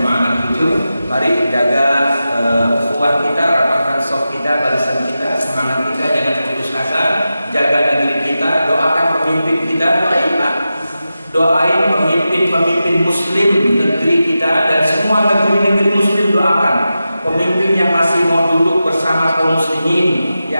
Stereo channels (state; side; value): inverted; both; correlation -0.92